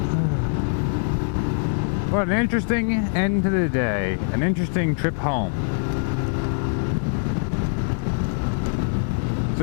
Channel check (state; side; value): silent; right; digital silence